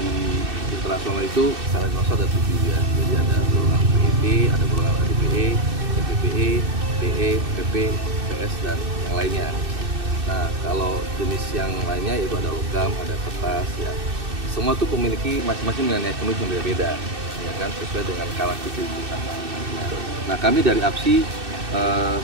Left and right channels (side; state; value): left; late; 2.6 ms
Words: internasional itu standar internasional ada 7 ya. Jadi ada golongan PET, ada golongan HDPE, PPE, PE, PP, PS dan yang lainnya. Nah, kalau jenis yang lainnya itu ada logam, ada kertas ya. Semua itu memiliki masing-masing nilai ekonomi yang berbeda, ya kan, sesuai dengan karakteristik usaha. Nah, kami dari APSI